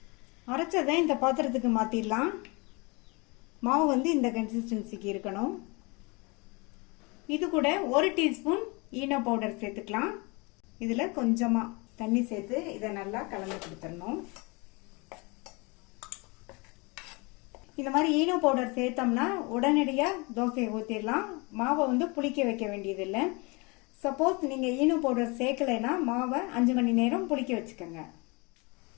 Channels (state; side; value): quieter; right; 28.2 dB